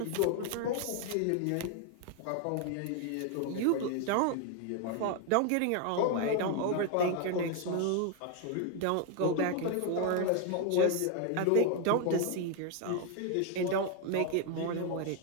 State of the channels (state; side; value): different; both; correlation 0.01